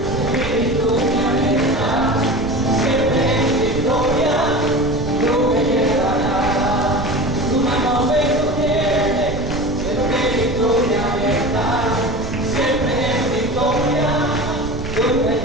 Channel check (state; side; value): noise; right; rumble, 9 dB below the sound